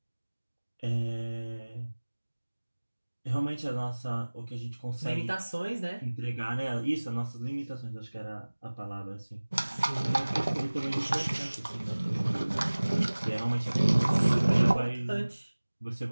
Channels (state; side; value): inverted; both; correlation -1.00